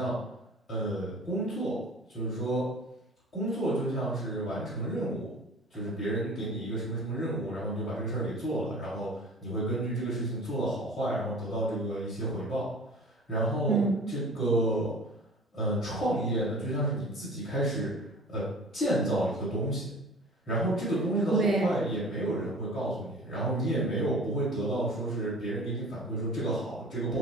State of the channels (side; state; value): both; normal; correlation 0.42